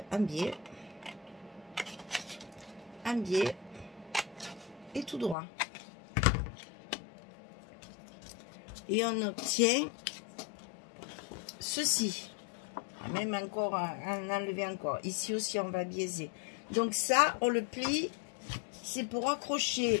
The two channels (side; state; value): right; drops out; at 5.4 s